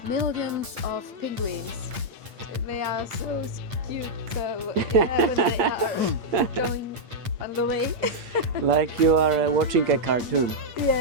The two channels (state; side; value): late; left; 8.6 ms